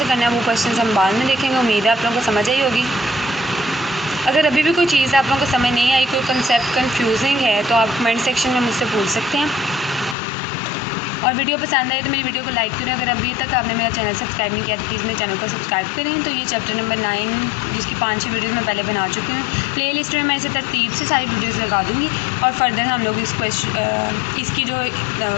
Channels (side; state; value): right; drops out; at 10.2 s